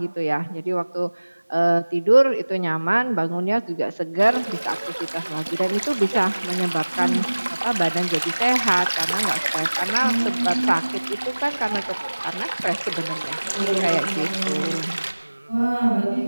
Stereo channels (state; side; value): inverted; both; correlation -1.00